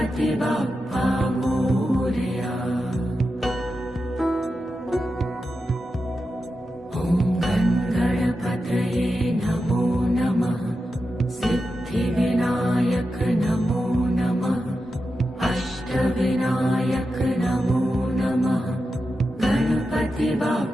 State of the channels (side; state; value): both; normal; correlation 0.90